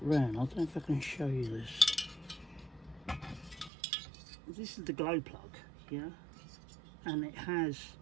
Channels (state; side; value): drops out; left; at 3.7 s